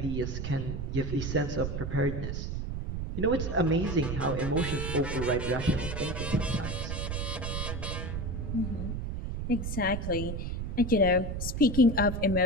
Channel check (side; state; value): right; noise; rumble, 4 dB below the sound